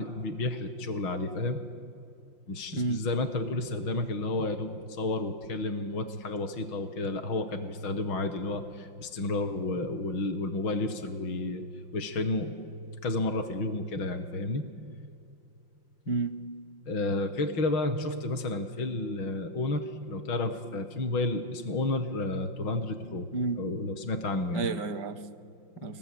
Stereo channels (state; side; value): late; right; 5.7 ms